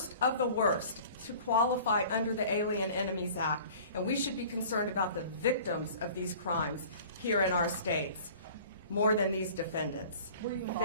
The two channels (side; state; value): both; inverted; correlation -0.46